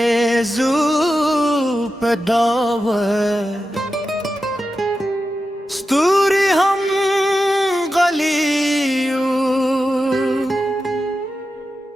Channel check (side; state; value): both; normal; correlation 0.91